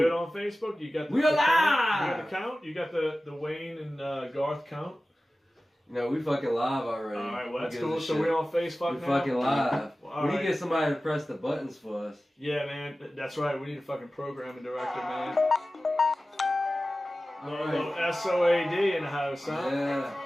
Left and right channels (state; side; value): normal; both; correlation 0.96